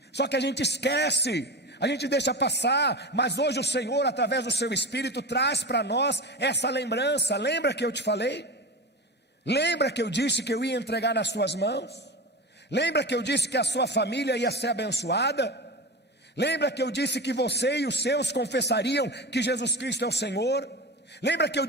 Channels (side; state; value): both; normal; correlation 0.26